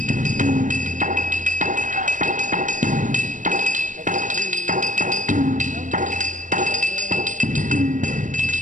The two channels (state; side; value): late; left; 0.37 ms